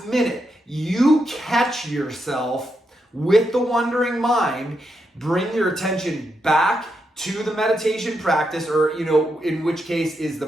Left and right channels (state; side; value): normal; both; correlation 0.83